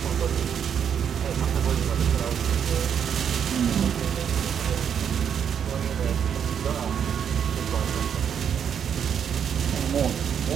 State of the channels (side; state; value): left; quieter; 8.1 dB